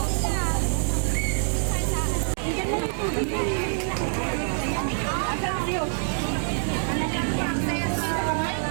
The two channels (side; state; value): left; silent; digital silence